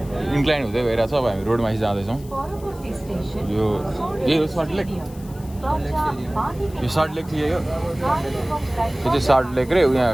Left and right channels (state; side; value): noise; left; hiss, 23 dB below the sound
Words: इन्क्लाइन हुँदै भइरहेछ अब हामी रोड माथि जाँदैछौँ यो यही हो सल्ट लेक यो सल्ट लेक चाहिँ यही हो यो चाहिँ सल्ट लेक रे यहाँ